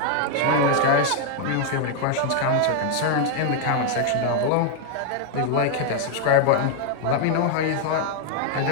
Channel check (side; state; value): both; different; correlation 0.00